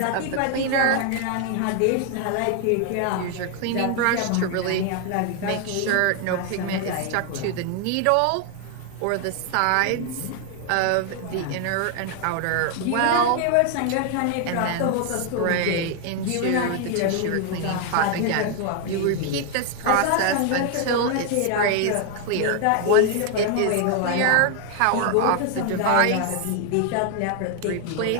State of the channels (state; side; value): different; both; correlation 0.00